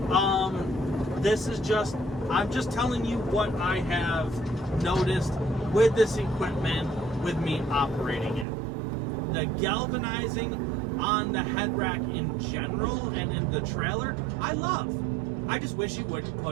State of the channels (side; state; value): left; drops out; at 8.5 s